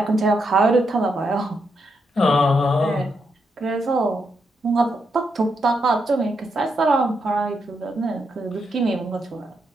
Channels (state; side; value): normal; both; correlation 0.81